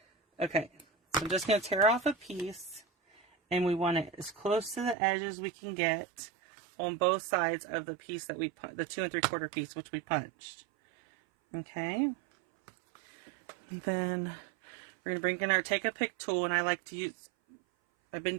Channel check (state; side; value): drops out; left; at 5.0 s